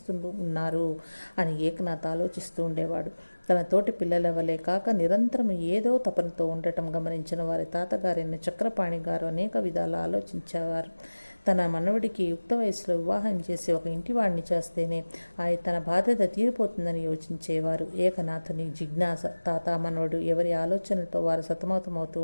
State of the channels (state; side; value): inverted; both; correlation -1.00